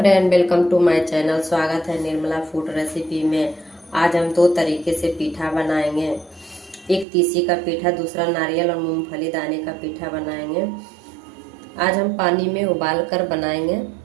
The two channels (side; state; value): left; drops out; at 7.1 s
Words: welcome to my channel. स्वागत है Nirmala food recipe में। आज हम दो तरीके से पीठा बनाएंगे। एक तीसी का पीठा, दूसरा नारियल और मूंगफली दाने का पीठा बनाएंगे। आज हम पानी में उबाल कर बनाएंगे,